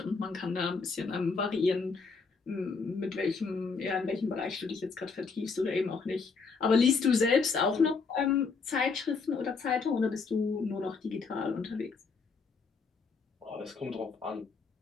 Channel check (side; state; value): right; quieter; 4.8 dB